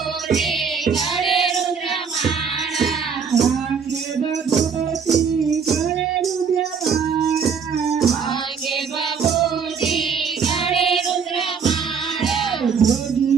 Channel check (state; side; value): quieter; left; 6.3 dB